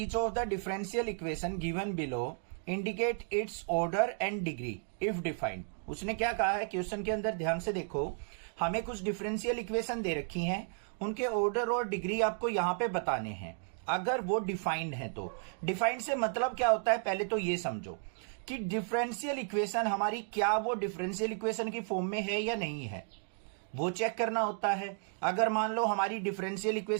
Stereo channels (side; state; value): left; silent; 55 dB below the other